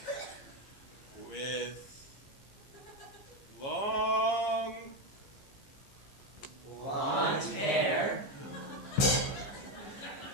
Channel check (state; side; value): late; right; 15 ms